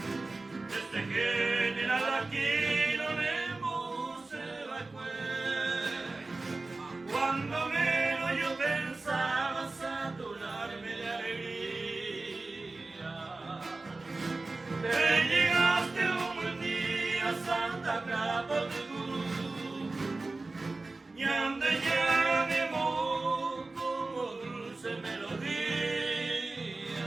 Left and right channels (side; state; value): left; quieter; 3.3 dB